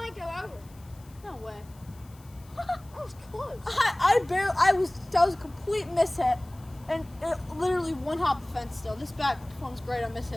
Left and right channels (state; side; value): noise; left; hiss, 27 dB below the sound